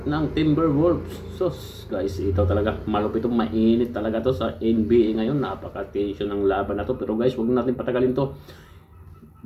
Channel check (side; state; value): both; identical; correlation 1.00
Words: ng Timberwolves. So guys, ito talaga malupit, mainit talaga to sa NBA ngayon. Napaka-tension ng laban na to. Pero guys, wag natin patagalin to.